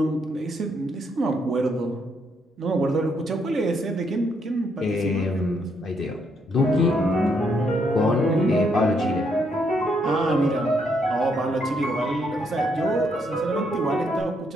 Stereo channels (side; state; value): both; normal; correlation 0.74